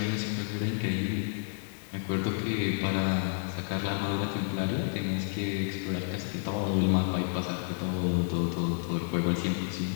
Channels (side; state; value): right; silent; 58 dB below the other